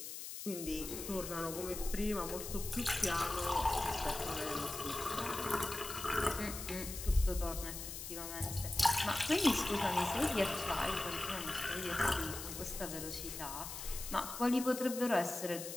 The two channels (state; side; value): noise; left; hiss, 8 dB below the sound